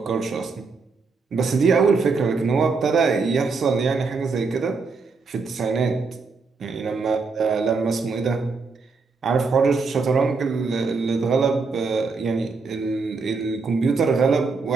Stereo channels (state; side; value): quieter; left; 4.5 dB